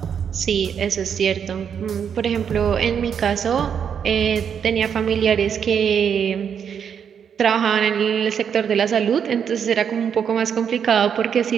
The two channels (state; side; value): quieter; left; 7.7 dB